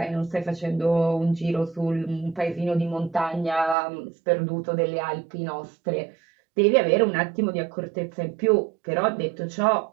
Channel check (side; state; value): left; drops out; at 3.8 s